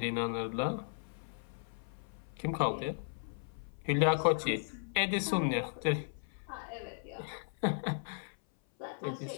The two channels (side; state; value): right; silent; 54 dB below the other